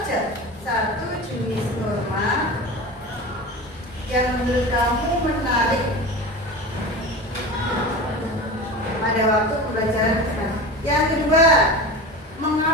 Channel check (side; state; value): both; normal; correlation 0.30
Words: satu jenis norma yang menurut kamu menarik pada waktu pembelajaran sekarang. Yang kedua,